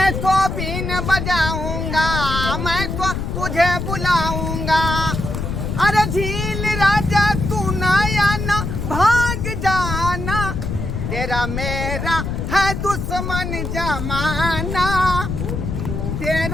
तो बीन बजाऊंगा, मैं तो तुझे बुलाऊंगा। अरे झील राजा तू नया ना भाग जाना, तेरा मेरा है दुश्मन जमाना,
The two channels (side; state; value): left; noise; rumble, 3 dB below the sound